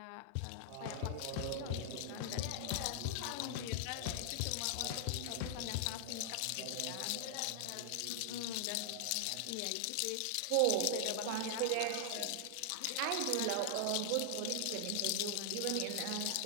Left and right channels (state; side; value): different; both; correlation 0.00